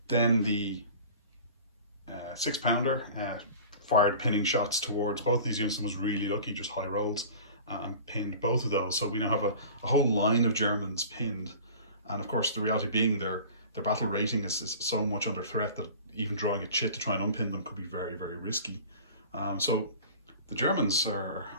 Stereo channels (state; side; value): inverted; both; correlation -0.41